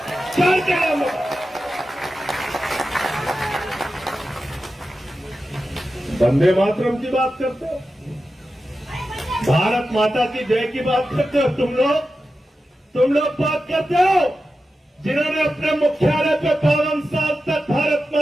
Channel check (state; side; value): normal; both; correlation 0.92